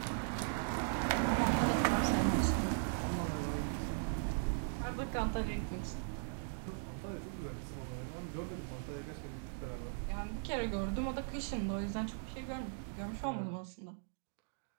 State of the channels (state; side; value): silent; left; digital silence